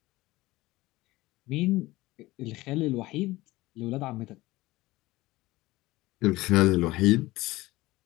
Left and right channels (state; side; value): quieter; right; 19.1 dB